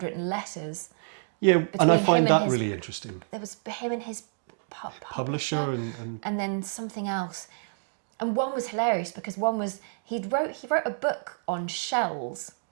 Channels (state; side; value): silent; left; digital silence